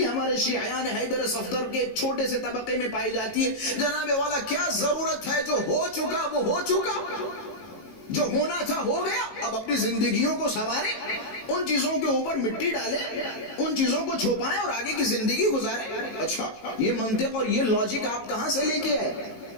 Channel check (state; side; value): late; right; 18 ms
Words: ہمارے شیعیان حیدر صفدر کے چھوٹے سے طبقے میں پائی جاتی ہے, جناب والا کیا ضرورت ہے, جو ہو چکا وہ ہو چکا, جو ہونا تھا ہو گیا, اب اپنی زندگیوں کو سنواریں, ان چیزوں کے اوپر مٹی ڈالیں, ان چیزوں کو چھپائیں اور آگے کی زندگی گزاریں. اچھا, یہ منطق اور یہ لاجک آپ کہاں سے لے کے آئے؟